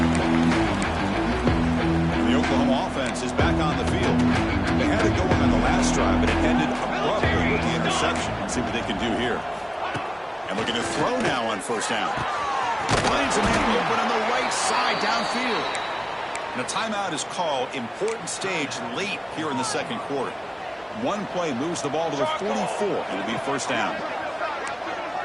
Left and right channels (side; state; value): both; identical; correlation 1.00